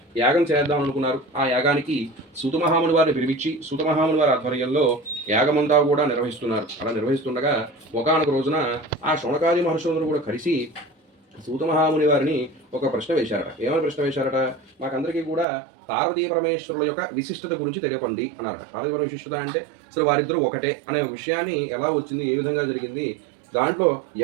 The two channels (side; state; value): left; drops out; at 15.5 s